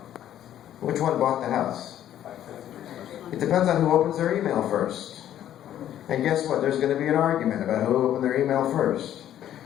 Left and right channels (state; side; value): quieter; right; 11.4 dB